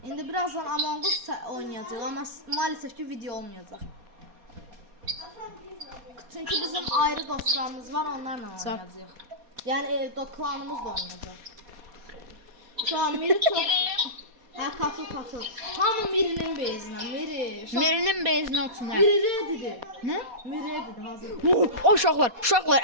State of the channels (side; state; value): left; late; 4.2 ms